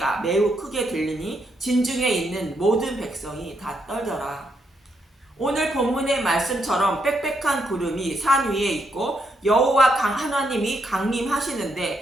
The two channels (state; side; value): normal; both; correlation 0.78